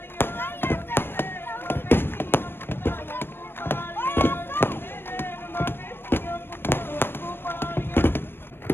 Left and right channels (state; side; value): late; right; 0.10 ms